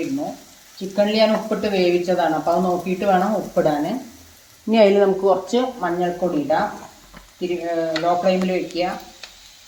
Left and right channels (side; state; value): both; identical; correlation 1.00